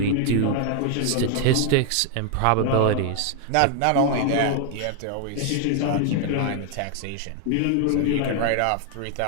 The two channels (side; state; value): both; different; correlation 0.00